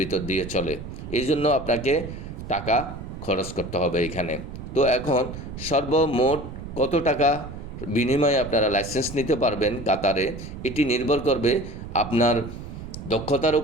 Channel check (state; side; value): noise; right; rumble, 10 dB below the sound